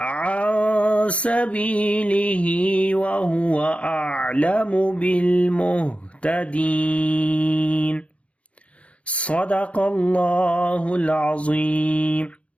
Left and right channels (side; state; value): right; late; 0.063 ms